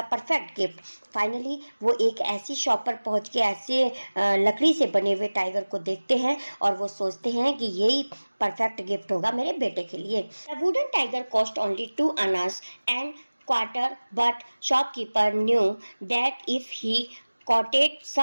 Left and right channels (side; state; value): both; inverted; correlation -1.00